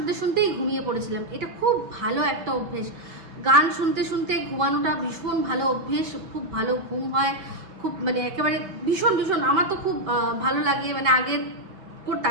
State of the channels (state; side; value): late; left; 5.2 ms